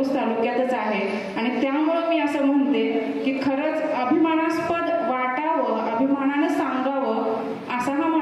तालुक्यातच आहे आणि त्यामुळं मी असं म्हणते की खरंच अभिमानास्पद वाटावं, अभिमानानं सांगावं असा हा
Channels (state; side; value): identical; both; correlation 1.00